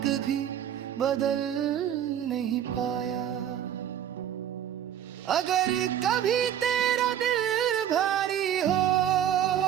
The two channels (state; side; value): quieter; left; 10.3 dB